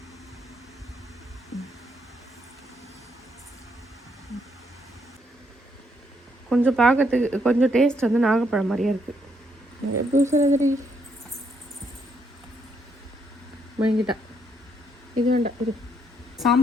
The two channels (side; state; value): both; normal; correlation 0.73